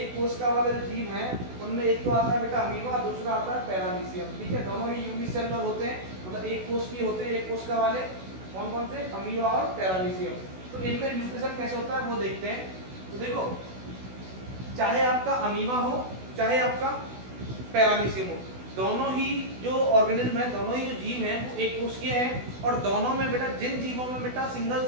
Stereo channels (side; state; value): left; late; 16 ms